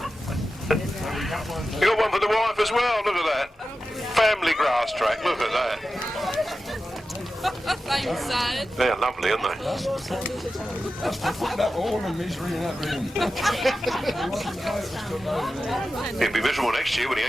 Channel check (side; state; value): both; normal; correlation 0.92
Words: You got one for the wife as well, look at that. Family Grasstrack, look at that. Same side. They're lovely, aren't they? That's to put that all the misery in that room. He'll be miserable next year when he